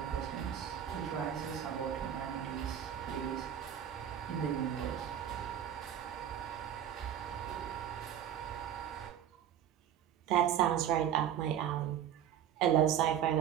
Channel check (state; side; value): quieter; left; 9.9 dB